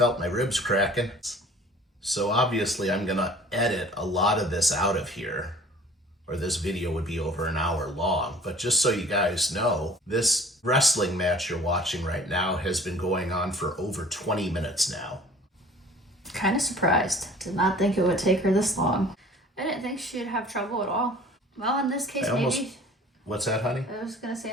my ribs cracking. So obviously I'm gonna edit a lot of this out of here, or this video would be over an hour long. But just so you guys know, this wrestling match you're watching right now has been going on for over 20 minutes now. Kind of surprised. Did not think it would take her this long. I didn't think she'd have trouble at all. Well, in this case, maybe... What's that, honey? I was going to say,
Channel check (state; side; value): normal; both; correlation 0.47